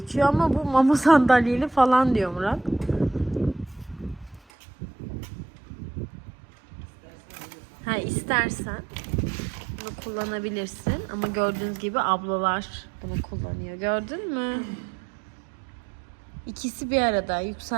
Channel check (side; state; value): left; drops out; at 4.4 s